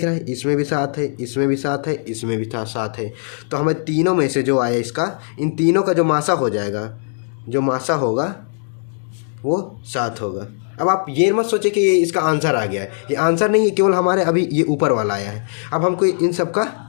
रहा है, इसमें भी 7 है, इसमें भी 7 है, इसमें भी 7 है। तो हमें तीनों में से जो आया इसका, इन तीनों का जो मासा हो जाएगा, जो मासा होगा वो 7 होगा। अब आप ये मत सोचे कि ये इसका आंसर आ गया है, ये आंसर नहीं है, केवल हमारे अभी ये ऊपर वाला आया है। अब हमको इन सब का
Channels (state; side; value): silent; right; digital silence